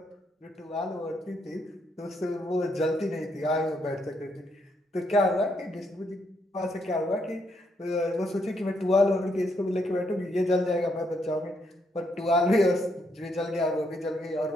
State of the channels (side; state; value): both; normal; correlation 0.75